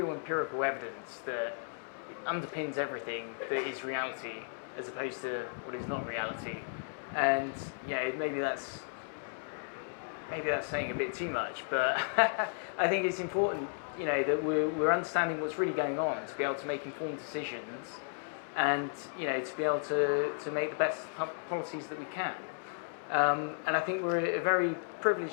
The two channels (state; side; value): silent; right; digital silence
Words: empirical evidence that underpins everything that is reality, as opposed to what is not reality. And maybe that's saying a bit too much, but I think it's important, that we're understanding what's really going on to be able to make informed decisions, and to be able to make the best policies that we can. And I think we're at a very